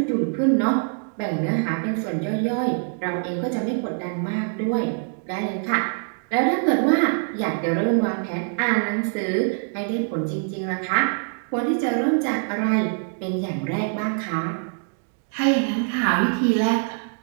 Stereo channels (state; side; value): silent; left; 58 dB below the other